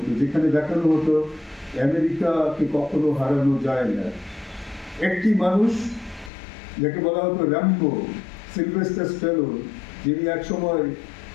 যেখানে দেখানো হতো আমেরিকাকে কখনো হারানো যায় না। একটি মানুষ যাকে বলা হতো র্যাম্বো, সিলভেস্টার স্ট্যালোন, যিনি এক সময়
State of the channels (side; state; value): right; drops out; at 6.3 s